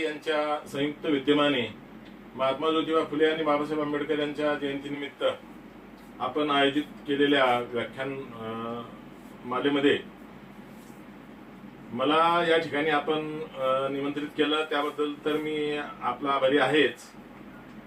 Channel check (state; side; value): identical; both; correlation 1.00